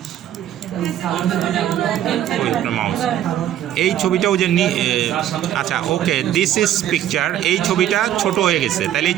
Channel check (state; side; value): quieter; left; 11.6 dB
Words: মাউস, এই ছবিটাও যে আচ্ছা ওকে, দিস ইজ পিকচার, এই ছবিটা ছোট হয়ে গেছে, তাহলে এই